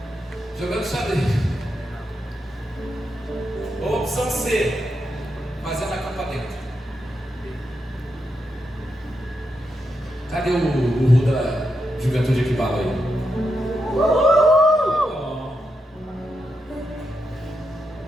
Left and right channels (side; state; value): both; normal; correlation 0.85